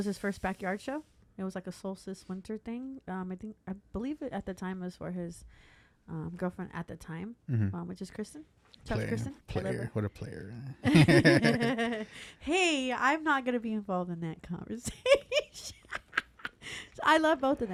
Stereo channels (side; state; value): both; identical; correlation 1.00